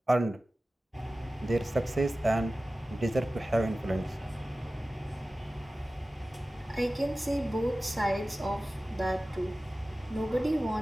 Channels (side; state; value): both; normal; correlation 0.96